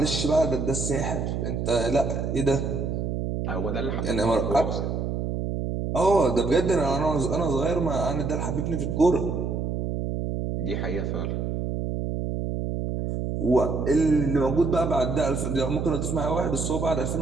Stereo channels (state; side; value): noise; right; hum, 2 dB below the sound